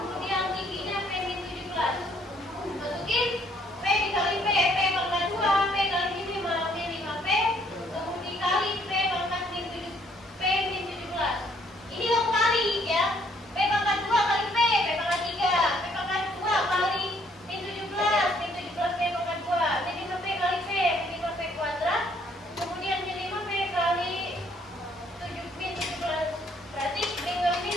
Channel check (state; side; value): normal; both; correlation 0.65